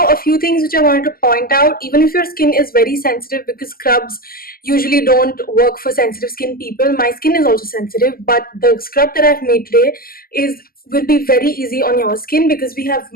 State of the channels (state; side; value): late; right; 0.42 ms